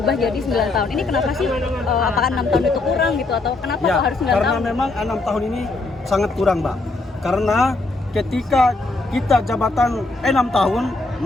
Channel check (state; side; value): quieter; right; 3.3 dB